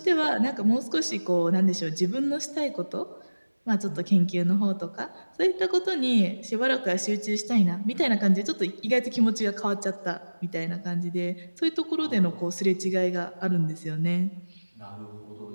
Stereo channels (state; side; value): inverted; both; correlation -1.00